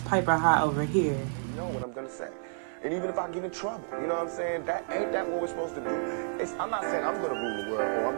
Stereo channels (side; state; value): left; silent; 56 dB below the other